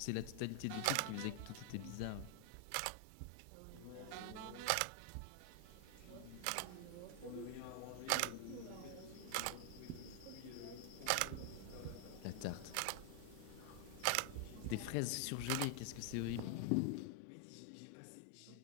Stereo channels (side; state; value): both; different; correlation 0.00